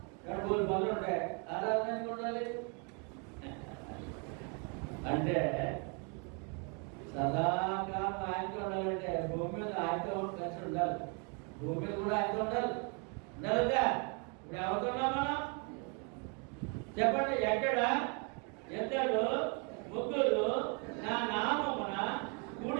కానీ వాళ్ళు బంధువులు ఉంటాయి. ఆరాధన ఎందుకు ఉండాలి అంటే సదాకాలం ఆయనతో ఉండాలంటే భూమి మీద ఆయనతో కలిసి ఉండాలి. భూమి మీద కూడా ఆయనతో ఉండాలి. ఉండాలిగా? ఇప్పుడు ఎవరుతున్నాం మనం? చెప్పండి. ఎక్కడ ఇద్దరు ముగ్గురు నా నామమున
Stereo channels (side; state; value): left; quieter; 35.9 dB